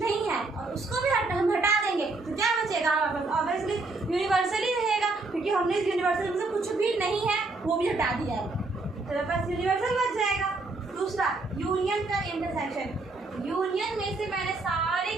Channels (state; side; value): quieter; left; 3.4 dB